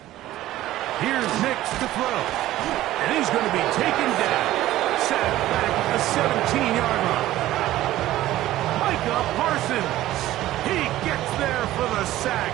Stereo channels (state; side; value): quieter; left; 15.0 dB